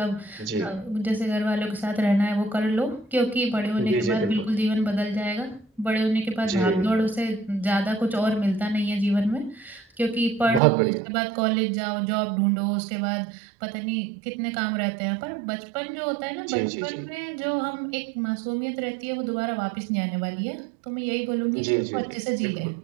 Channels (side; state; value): left; drops out; at 10.6 s